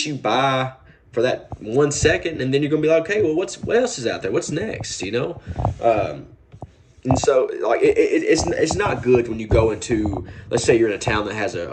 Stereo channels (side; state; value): both; identical; correlation 1.00